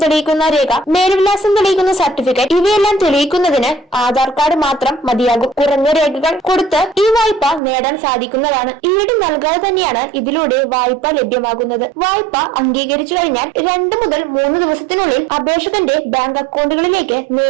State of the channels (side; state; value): left; drops out; at 7.6 s